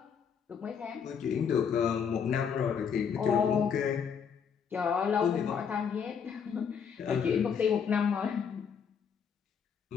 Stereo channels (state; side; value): quieter; right; 7.0 dB